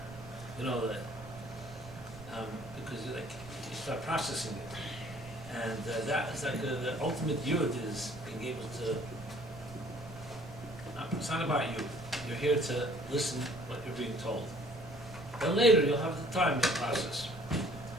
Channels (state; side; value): noise; right; rumble, 16 dB below the sound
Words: Because you start processing it. And that is like the ultimate yud is being able to, it's not about you. You're here to listen what you're being told. Then later you'll have the time to process.